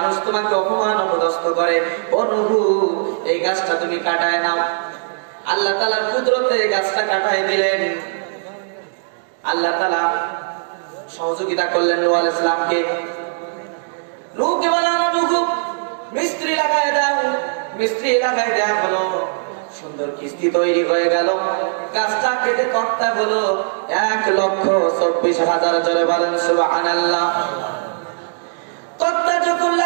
তোমাকে অপমান অপদস্থ করে, ও নূহ এই গাছটা তুমি কাটায় নাও। আল্লাহ তাআলার কুদরতে গাছটা কাটায় দিলেন। আল্লাহ তাআলা সহযোগিতা করলেন নূহ আলাইহিস সালামকে। নূহকে বললেন, নূহ মিস্ত্রি লাগায় দাও। মিস্ত্রি লাগায় দেয়া হলো, সুন্দর কিস্তি তৈরি হয়ে গেল। গাছটা কেটে তক্তা হলো 1,24,000। জোরে বলেন সুবহানাল্লাহ। তক্তা যখন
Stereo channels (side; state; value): left; silent; digital silence